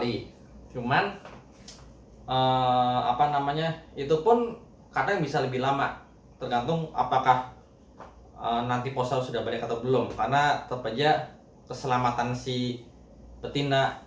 Cuman itu pun kadang bisa lebih lama, tergantung apakah nanti posal sudah balik atau belum, karena tetap aja keselamatan si betina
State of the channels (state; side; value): identical; both; correlation 1.00